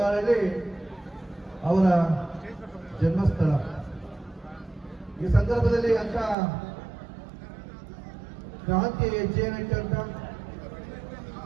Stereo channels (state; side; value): drops out; left; at 6.4 s